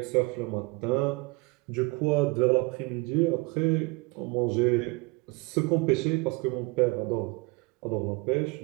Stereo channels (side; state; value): left; quieter; 27.1 dB